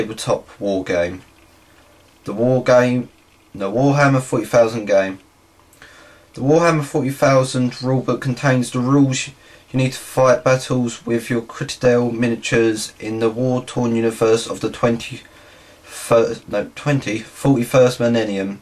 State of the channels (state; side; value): identical; both; correlation 1.00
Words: war game. The Warhammer 40,000 game. The Warhammer 40,000 rulebook contains the rules you need to fight battles with your Citadel miniatures in the war-torn universe of the 41st millennium.